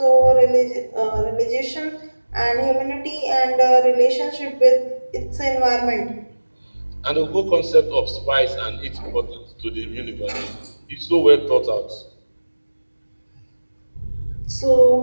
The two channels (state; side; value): inverted; both; correlation -1.00